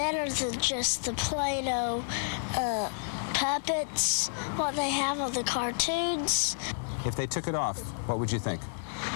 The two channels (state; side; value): silent; right; digital silence